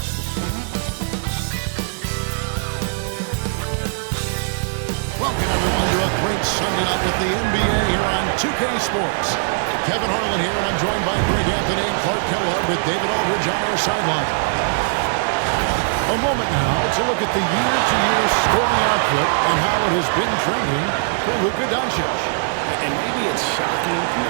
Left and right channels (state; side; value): silent; left; 65 dB below the other